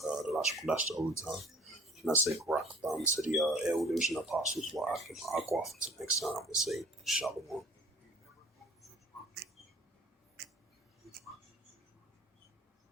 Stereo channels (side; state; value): both; normal; correlation 0.50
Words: Lashon the Old Tongue. And I say Barak to the elders and apostles, while I can until next time, I say Shalom.